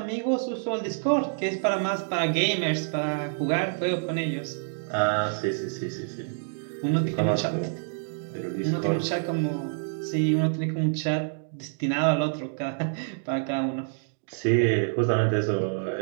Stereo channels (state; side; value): silent; left; digital silence